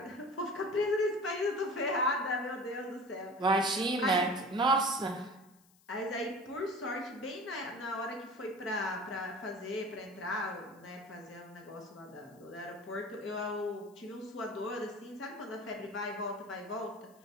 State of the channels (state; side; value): noise; left; hiss, 30 dB below the sound